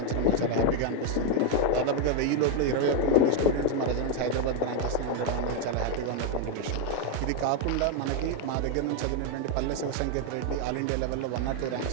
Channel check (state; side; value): different; both; correlation 0.01